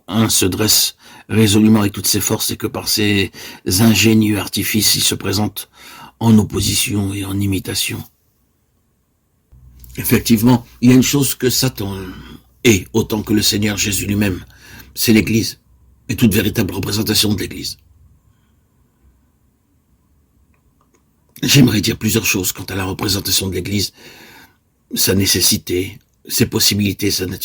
1 se dresse résolument avec toutes ses forces et que par ses ingénieux artifices, il se présente en opposition et en imitation. Effectivement, il y a une chose que Satan est autant que le Seigneur Jésus lui-même, c'est l'Église et toute véritable représentation de l'Église. J'aimerais dire plusieurs choses quant à la représentation de l'Église, sa nécessité, ses possibilités, sa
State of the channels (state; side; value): identical; both; correlation 1.00